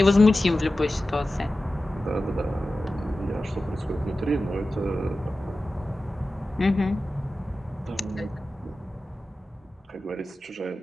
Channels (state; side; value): normal; both; correlation 0.94